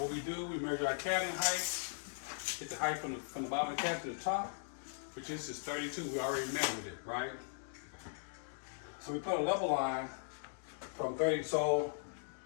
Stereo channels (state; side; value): silent; right; digital silence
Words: what we do, we measure our cabinet height, get the height from the bottom of the cabinet to the top, which is 32. We already measured it, right? So we put a level line from 30. So